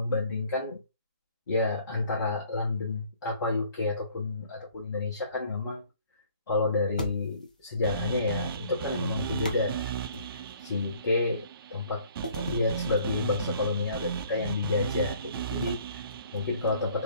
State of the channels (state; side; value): inverted; both; correlation -0.57